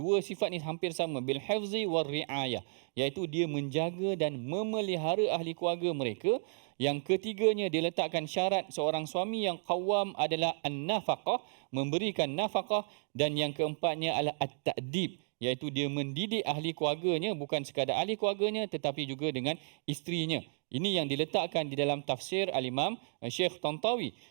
sifat ni hampir sama, bil hifzi war riayah, iaitu dia menjaga dan memelihara ahli keluarga mereka. Yang ketiganya, dia letakkan syarat seorang suami yang qawwam adalah an-nafaqah, memberikan nafaqah, dan yang keempatnya adalah at-ta'dib, iaitu dia mendidik ahli keluarganya, bukan sekadar ahli keluarganya tetapi juga dengan isterinya. Ini yang diletakkan di dalam tafsir Al-Imam Syekh Tantawi.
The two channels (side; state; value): left; silent; digital silence